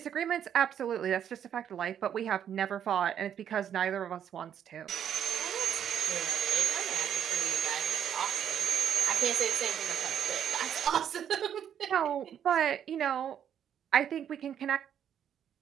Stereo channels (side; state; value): left; quieter; 9.2 dB